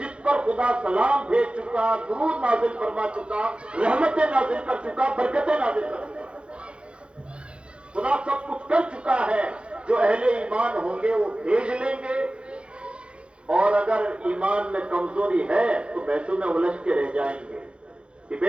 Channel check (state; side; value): late; left; 0.057 ms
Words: پر خدا سلام بھیج چکا، درود نازل فرما چکا، رحمتیں نازل کر چکا، برکتیں نازل کر چکا۔ خدا سب کچھ کر چکا ہے، جو اہل ایمان ہوں گے وہ بھیج لیں گے، اور اگر ایمان میں کمزوری ہے تو بحثوں میں الجھ کے رہ جائیں گے۔